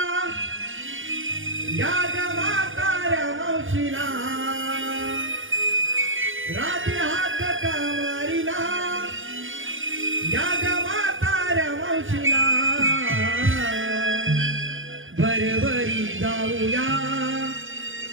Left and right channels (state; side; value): late; left; 0.58 ms